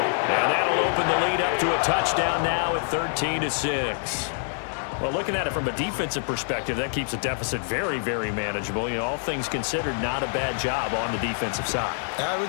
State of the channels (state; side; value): silent; right; digital silence